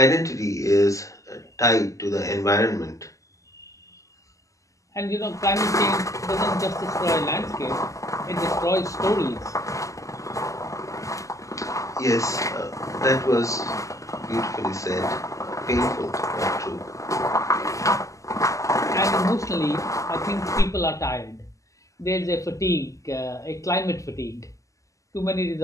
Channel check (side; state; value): right; late; 0.16 ms